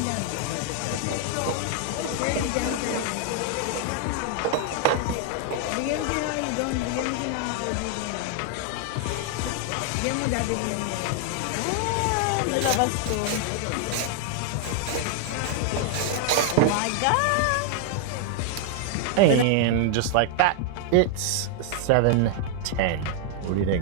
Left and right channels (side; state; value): both; different; correlation 0.00